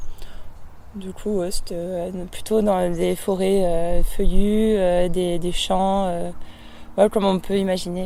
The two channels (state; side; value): identical; both; correlation 1.00